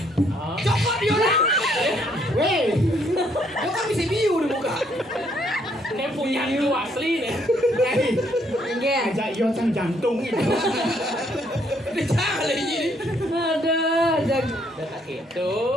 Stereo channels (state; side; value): normal; both; correlation 0.69